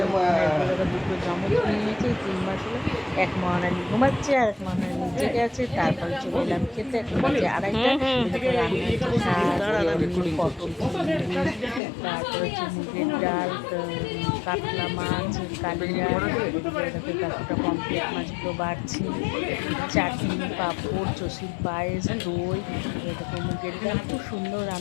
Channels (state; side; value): drops out; right; at 11.8 s